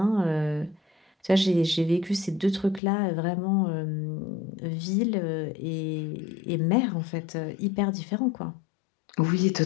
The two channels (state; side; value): drops out; right; at 2.8 s